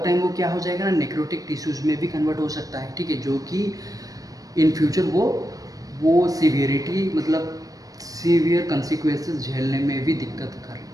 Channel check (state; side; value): late; left; 0.17 ms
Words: वो क्या हो जाएगा ना, नेक्रोटिक टिश्यूज में भी कन्वर्ट हो सकता है, ठीक है, जो कि इन फ्यूचर वो सीवियरिटी मतलब सीवियर कंसिक्वेंसेस झेलने में भी दिक्कत